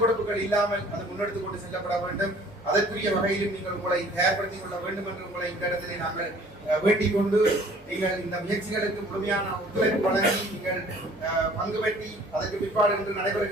கொடுப்புகள் இல்லாமல் அது முன்னெடுத்துக் கொண்டு செல்லப்பட வேண்டும். அதற்குரிய வகையிலும் நீங்கள் உங்களை தயார்படுத்திக் கொள்ள வேண்டும் என்று உங்களை இந்த இடத்திலே நாங்கள் வேண்டிக் கொண்டு நீங்கள் இந்த முயற்சிகளுக்கு முழுமையான ஒத்துழைப்பு வழங்கி நீங்கள் பங்கு பெற்றி அதற்கு பிற்பாடு என்று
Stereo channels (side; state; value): both; normal; correlation 0.53